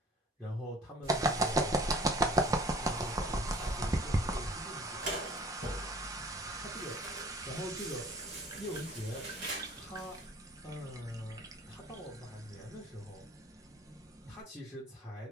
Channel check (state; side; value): normal; both; correlation 0.49